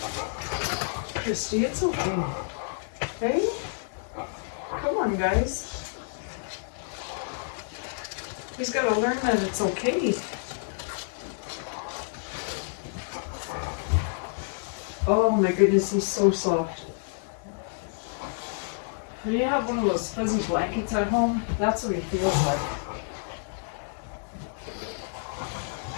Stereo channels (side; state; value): right; silent; digital silence